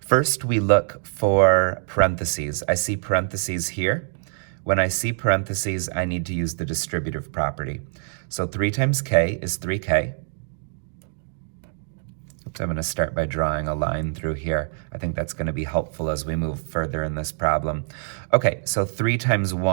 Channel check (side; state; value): left; silent; 57 dB below the other